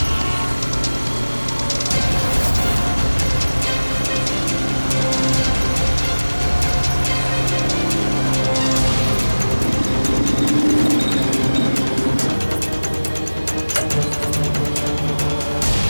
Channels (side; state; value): both; inverted; correlation -1.00